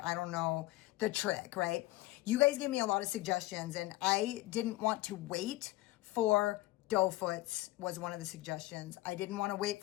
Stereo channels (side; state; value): right; quieter; 18.0 dB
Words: I don't know the trick, right? You guys gave me a lot of suggestions and I didn't want to wait for doe foots was one of the suggestions. I didn't want to wait